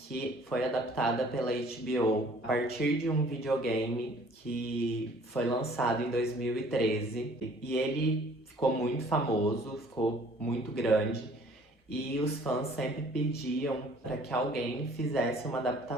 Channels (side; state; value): both; normal; correlation 0.55